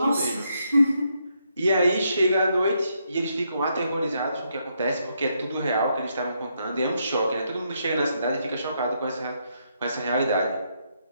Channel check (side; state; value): both; inverted; correlation -0.77